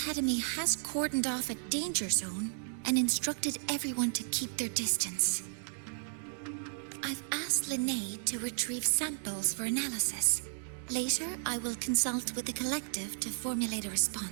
has cordoned off a danger zone and instructed everyone to keep their distance. I've asked Linnae to retrieve samples for analysis. Later, I will consult with the collective to formulate a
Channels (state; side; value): silent; left; digital silence